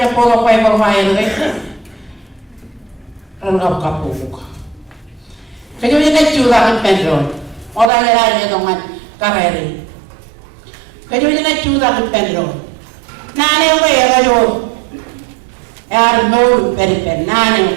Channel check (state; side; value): drops out; left; at 7.9 s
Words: pola Bible file rengkap kapuk. Kejualan curah keperluan. Orang lain dengan kararina. Kajo jina chuda ke pedro nane we kajo yar no peri pen